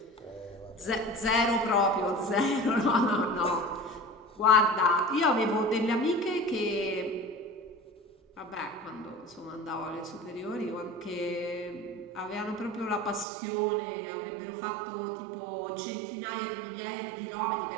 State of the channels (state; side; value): drops out; left; at 13.2 s